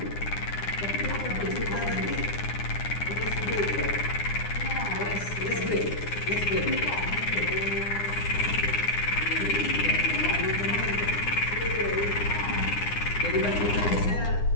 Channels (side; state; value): right; late; 9.8 ms